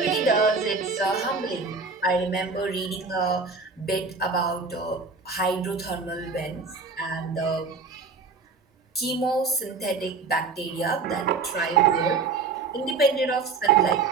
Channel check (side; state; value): left; quieter; 4.5 dB